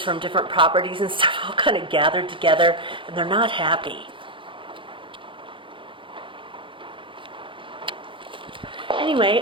from different properties and stuff all kind of gathered together, and they're not happy.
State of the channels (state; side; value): late; left; 0.25 ms